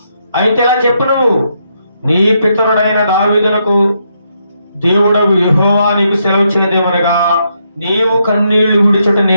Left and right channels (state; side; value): inverted; both; correlation -0.78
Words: అయితే ఇలా చెప్పు, నువ్వు నీ పితరుడైన దావీదునకు దేవుడవు యెహోవా నీకు సెలవిచ్చినదేమనగా, నీవు కన్నీళ్లు విడిచుట